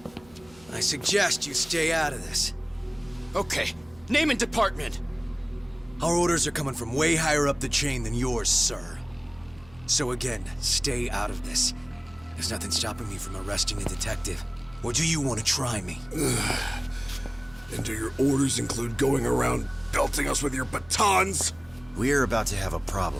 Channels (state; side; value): noise; right; hum, 25 dB below the sound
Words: I suggest you stay out of this. Okay, name and department. Our orders are coming from way higher up the chain than yours, sir. So again, stay out of this. There's nothing stopping me from arresting a detective. Or do you want to try me? And do your orders include going around belting us with your batons? We're about to have a